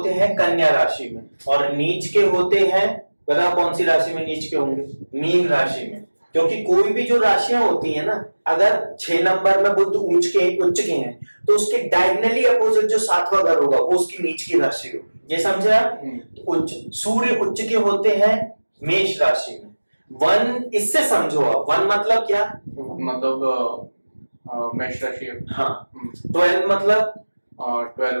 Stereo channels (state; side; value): inverted; both; correlation -1.00